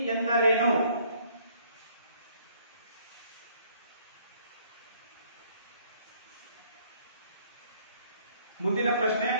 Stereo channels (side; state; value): both; inverted; correlation -0.61